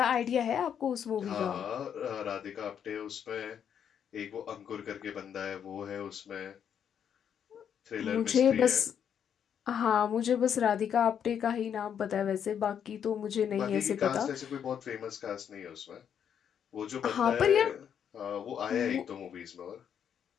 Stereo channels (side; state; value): right; quieter; 8.4 dB